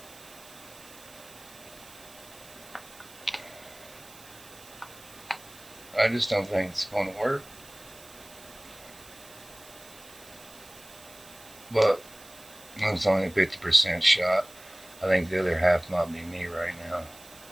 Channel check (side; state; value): right; noise; hiss, 20 dB below the sound